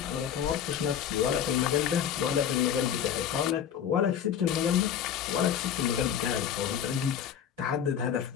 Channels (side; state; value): right; quieter; 9.0 dB